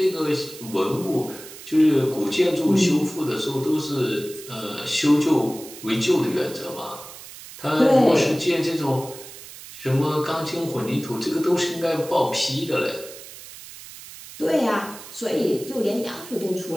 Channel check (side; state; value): right; noise; hiss, 15 dB below the sound